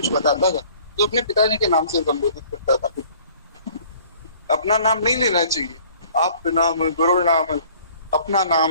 बताता था तो अपने पिताजी के नाम से संबोधित करता था। अपना नाम नहीं लेना चाहिए, आप नाम, गुरु नाम, अपना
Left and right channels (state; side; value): inverted; both; correlation -0.53